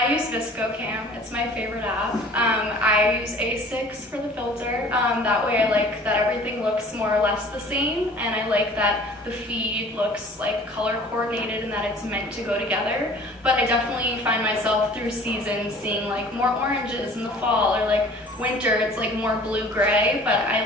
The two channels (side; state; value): both; normal; correlation 0.48